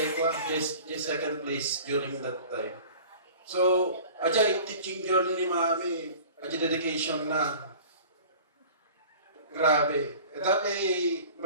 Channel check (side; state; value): both; inverted; correlation -0.43